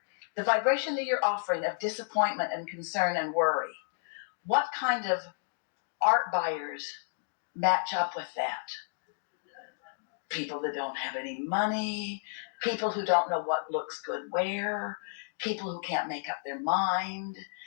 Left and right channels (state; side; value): silent; right; digital silence